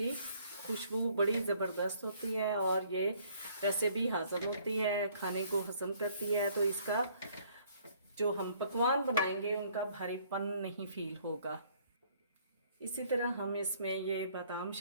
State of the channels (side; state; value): both; inverted; correlation -0.61